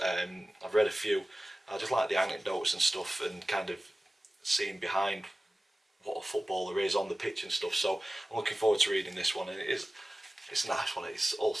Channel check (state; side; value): normal; both; correlation 0.97